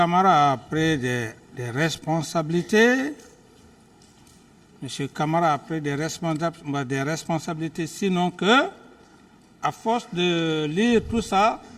a pris des responsabilités. M. Camara a pris des responsabilités, sinon que, à force de lire tout ça,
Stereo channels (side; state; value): both; identical; correlation 1.00